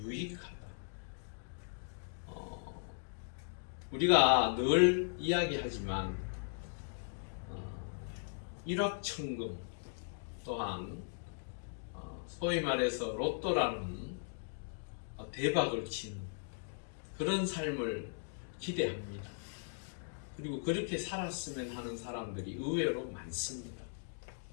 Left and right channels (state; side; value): silent; right; digital silence